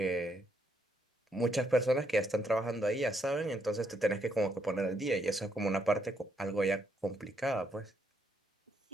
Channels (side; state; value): both; normal; correlation 0.74